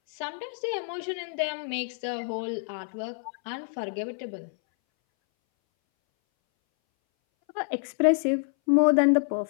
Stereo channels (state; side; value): silent; right; 60 dB below the other